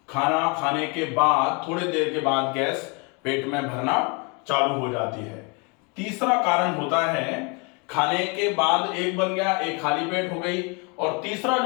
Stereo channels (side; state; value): right; quieter; 31.6 dB